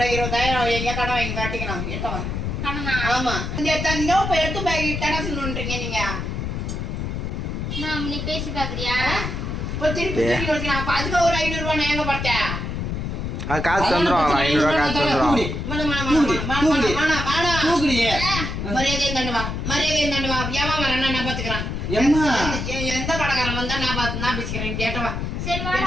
20,000 எங்க கடன் வாங்கி காட்டிக்கணும். எட்டவா கடனா? ஆமா. இந்த தந்தோ இப்ப எடுத்து போய் கடன் சொல்லுன்றீங்க நீங்க. நீ பேசி பாக்குறியா? இப்ப திருப்பி திருப்பி வச்சுக்கலாம். அப்ப அதுக்கு ஒரு 500 ரூபாய் நான் எங்க பார்த்தேன்? காசு தந்துருவாங்க. 500 காசு தந்துருவாங்க. மரியாதையும் தண்டுவா. மரியாதையும் தண்டுவா. ஏமா வரேன்னா நான் பாத்துக்கிறேன். எந்த கடைக்காரன் வந்தா நான் பேசிக்கிறேன். கேட்டவா சரி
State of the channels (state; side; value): noise; left; rumble, 3 dB below the sound